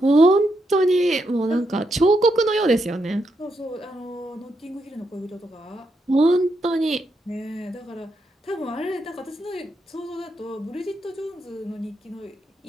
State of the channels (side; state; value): both; normal; correlation 0.82